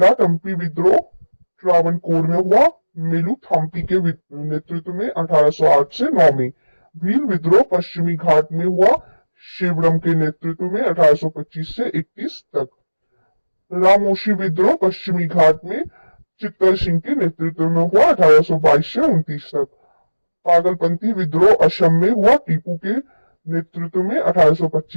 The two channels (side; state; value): both; inverted; correlation -1.00